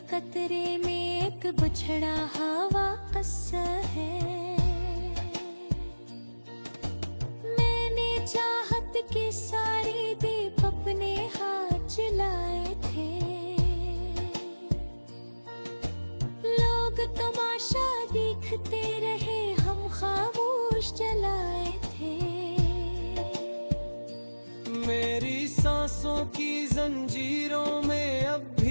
कतरे में एक बिछड़ा हवा किस्सा है। मैंने चाहत के सारे दीप अपने हाथ जलाए थे। लोग तमाशा देखते रहे, हम खामोश जलाए थे। मेरी सांसों की जंजीरों में अब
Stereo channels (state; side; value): inverted; both; correlation -1.00